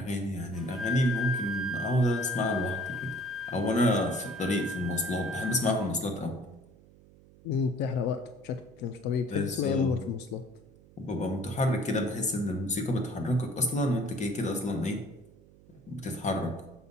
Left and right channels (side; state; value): right; noise; hum, 25 dB below the sound